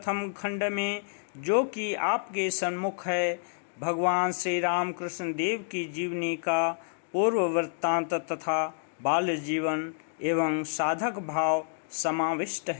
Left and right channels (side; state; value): right; silent; digital silence